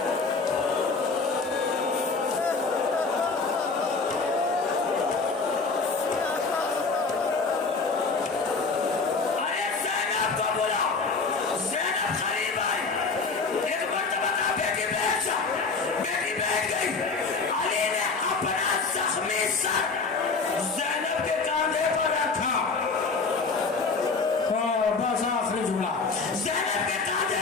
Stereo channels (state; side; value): quieter; right; 4.3 dB